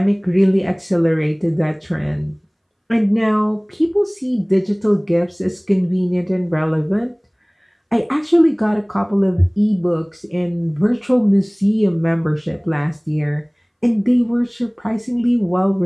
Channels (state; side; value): identical; both; correlation 1.00